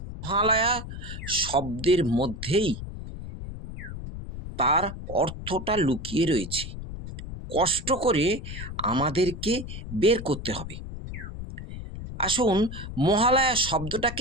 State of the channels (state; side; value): noise; left; rumble, 9 dB below the sound